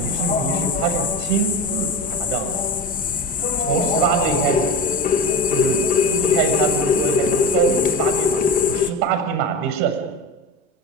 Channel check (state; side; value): normal; both; correlation 0.25